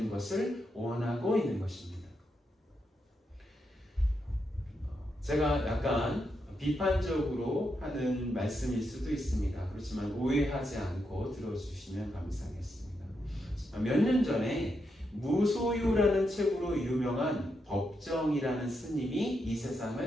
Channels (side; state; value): both; normal; correlation 0.83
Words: 것을 원하고 있는 것입니다. 제가 약간 비판적으로 하는 말씀일 수도 있습니다. 그렇지만 오해하지 않고 들어주시면 감사하겠습니다. 몇 년 전에 무소유라는 책으로 유명한 법정이라는 스님이 이